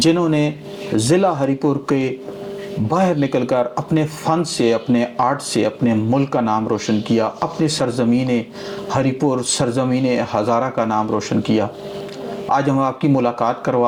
نے ضلع ہری پور کے باہر نکل کر اپنے فن سے، اپنے آرٹ سے اپنے ملک کا نام روشن کیا، اپنی سرزمین ہری پور، سرزمین ہزارہ کا نام روشن کیا. آج ہم آپ کی ملاقات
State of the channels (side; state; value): both; identical; correlation 1.00